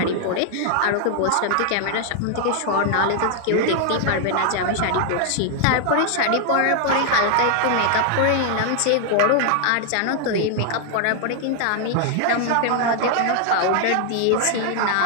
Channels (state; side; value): different; both; correlation 0.00